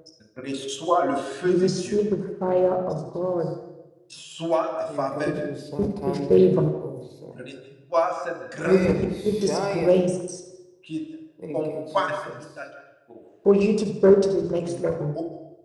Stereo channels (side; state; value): both; identical; correlation 1.00